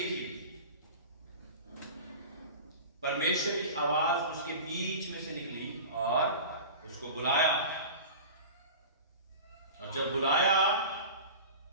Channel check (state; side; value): inverted; both; correlation -0.35